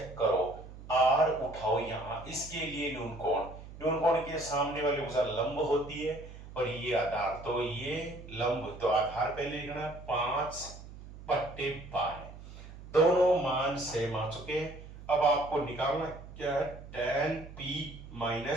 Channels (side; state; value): right; noise; hum, 15 dB below the sound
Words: करो, r उठाओ यहां, इसके लिए न्यून कोण के सामने वाली भुजा लंब होती है और ये आधार, तो ये लंब, तो आधार पहले लिखना 5/12। दोनों मान सेम आ चुके हैं। अब आपको निकालना क्या है, tan p